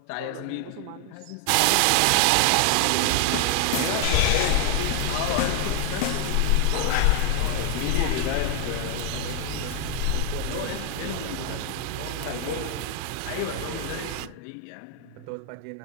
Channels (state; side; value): different; both; correlation 0.00